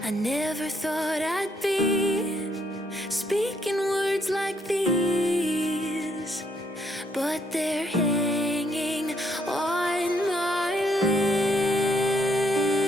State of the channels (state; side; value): normal; both; correlation 0.72